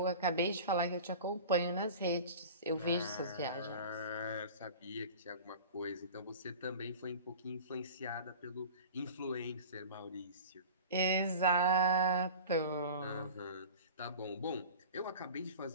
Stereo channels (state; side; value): inverted; both; correlation -0.38